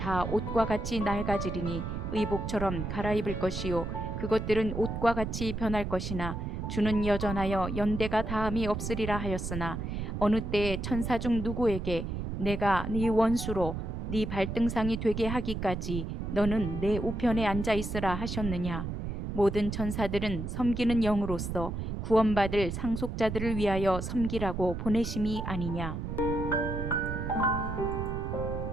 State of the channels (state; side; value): noise; right; rumble, 4 dB below the sound